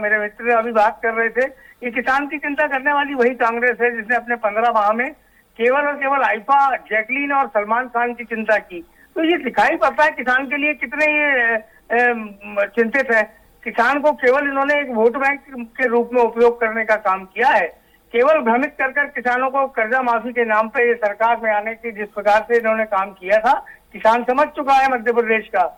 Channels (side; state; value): both; identical; correlation 1.00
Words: मित्र अभी बात कर रहे थे, ये किसान की चिंता करने वाली वही कांग्रेस है जिसने अपने 15 माह में केवल और केवल आइफा, जैकलीन और सलमान खान की चिंता की। तो ये दिखाई पड़ता है किसान के लिए कितने ये चिंतित है। किसान को केवल इन्होंने एक वोट बैंक के रूप में उपयोग करने का काम किया है। केवल भ्रमित कर किसानों को कर्जा माफी के नाम पे ये सरकार में आने की जिस प्रकार से इन्होंने काम किया था, किसान समझ चुका है मध्य प्रदेश का